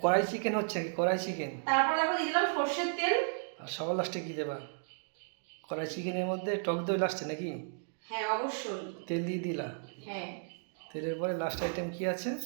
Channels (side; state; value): left; silent; digital silence